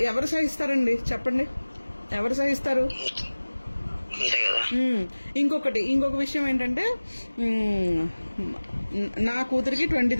ఎవరు సహిస్తారండి చెప్పండి, ఎవరు సహిస్తారు? ఇంకొక విషయం ఏంటంటే నా కూతురికి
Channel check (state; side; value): inverted; both; correlation -1.00